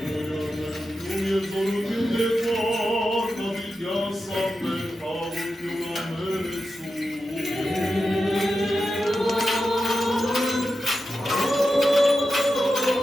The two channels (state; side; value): normal; both; correlation 0.90